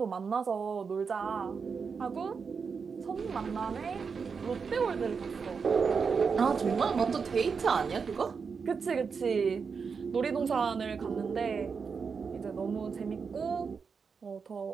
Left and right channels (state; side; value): quieter; left; 5.6 dB